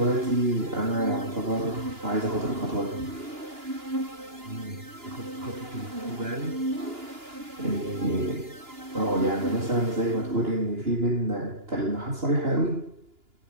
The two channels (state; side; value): late; left; 2.9 ms